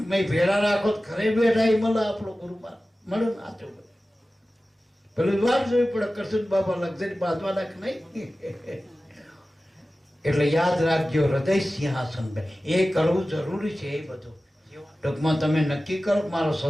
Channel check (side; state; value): both; normal; correlation 0.96